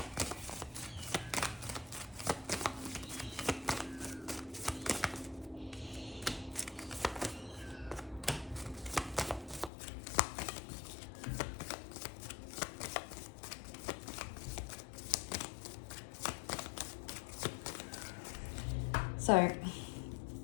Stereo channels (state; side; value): drops out; right; at 9.7 s